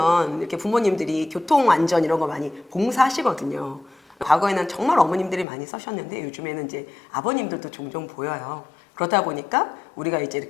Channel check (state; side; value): drops out; right; at 5.5 s